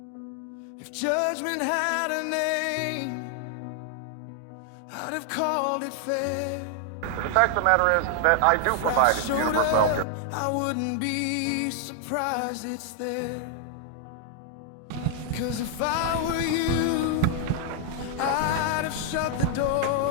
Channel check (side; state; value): both; different; correlation 0.00